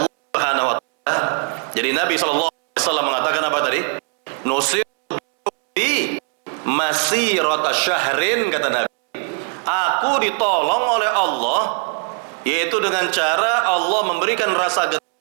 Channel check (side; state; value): left; quieter; 39.0 dB